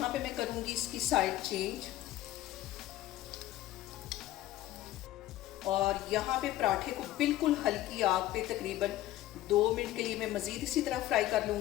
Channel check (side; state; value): right; quieter; 14.9 dB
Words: पे मैं करूँगी इसकी साइड चेंज, और यहाँ पे पराठे को बिल्कुल हल्की आग पे तकरीबन 2 मिनट के लिए मैं मज़ीद इसी तरह फ्राई कर